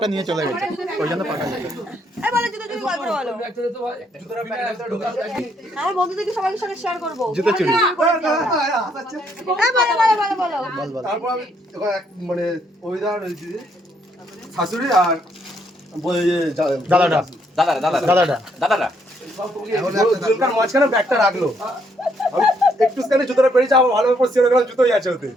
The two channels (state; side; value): normal; both; correlation 0.71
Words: নিয়ে চলে গেছে, ওই জন্য পাকা গেছে। আমার বন্ধুদেরকে সবার সাথে শেয়ার করবো। জুতো চুরি তারপর আমি মানে অভিদার শাশুড়ি আর দাদাটা মাঝখানে ব্যাগটা রাখলো। একটু স্ক্যানে জুতোটা পেরেছে, আবার ভালো করে সিওর গেলাম জুতোই আছে ওতে।